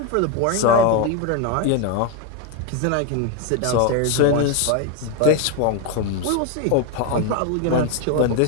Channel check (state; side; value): different; both; correlation 0.01